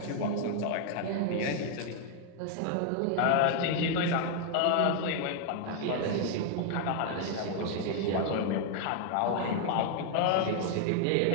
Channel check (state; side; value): different; both; correlation 0.00